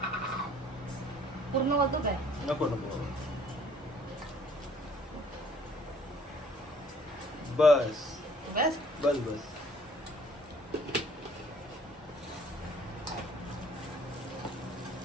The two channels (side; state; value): both; normal; correlation 0.57